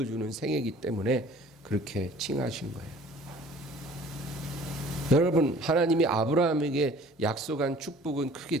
생애이기 때문에 그렇게 칭하신 거예요. 여러분, 하나님이 아브라함에게 약속한 축복은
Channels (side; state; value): both; normal; correlation 0.50